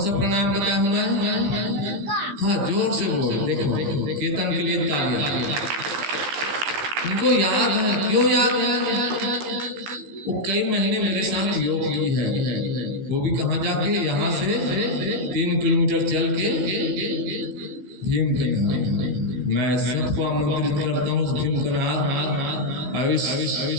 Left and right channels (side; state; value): left; late; 15 ms